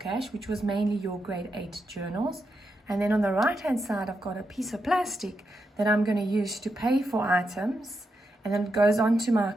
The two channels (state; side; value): normal; both; correlation 0.85